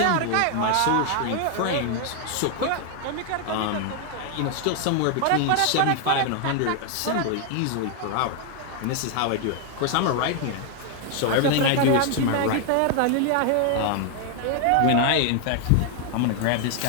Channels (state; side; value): different; both; correlation 0.00